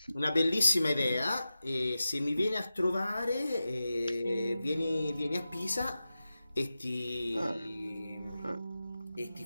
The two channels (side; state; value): both; inverted; correlation -0.93